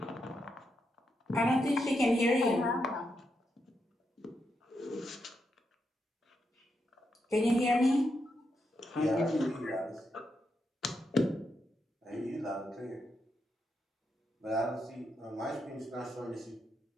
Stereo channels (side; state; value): both; normal; correlation 0.83